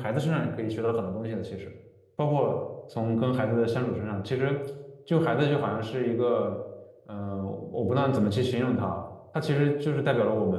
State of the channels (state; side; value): identical; both; correlation 1.00